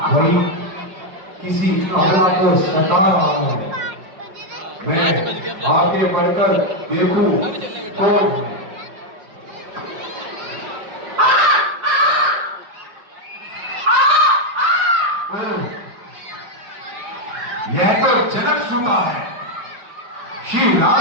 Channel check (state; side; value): late; left; 5.6 ms